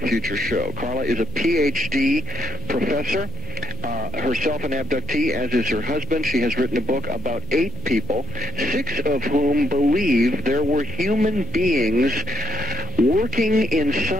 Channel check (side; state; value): left; noise; hum, 21 dB below the sound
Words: future show. Carla is a PhD professor, herself an abductee, as is her husband. She has written a book about 8 people, 6 of whom believe there were human beings working in